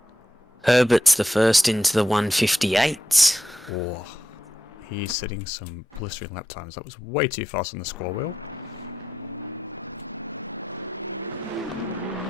Herbert's the first into the 158. Oh, he's setting some blistering lap times. That was way too fast on the scroll wheel.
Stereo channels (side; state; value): both; normal; correlation 0.86